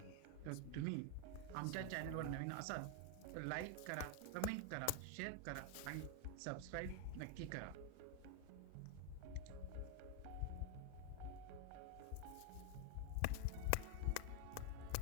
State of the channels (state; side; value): different; both; correlation 0.00